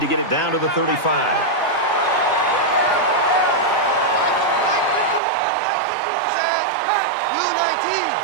to get it down to the 35.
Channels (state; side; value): drops out; left; at 5.2 s